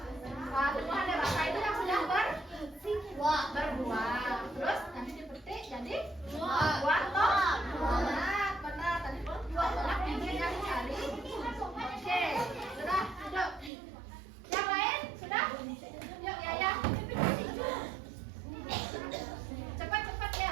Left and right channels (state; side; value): drops out; left; at 13.7 s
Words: Tumbuhan dewasa itu yang sudah berbuah. Terus nanti dipetik jadi buah tomat. Benar. Tadi buah tomat bijinya dicari. Oke. Sudah. Duduk. Yang lain sudah? Yuk ya. Cepat ya. Cepat